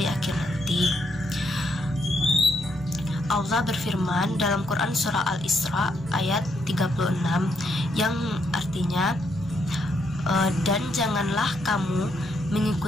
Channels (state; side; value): normal; both; correlation 0.76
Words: akhir nanti. Allah berfirman dalam Quran surah Al-Isra ayat 36 yang artinya, dan janganlah kamu